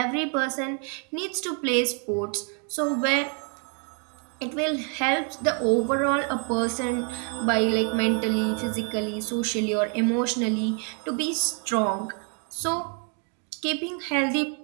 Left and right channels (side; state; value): left; quieter; 40.0 dB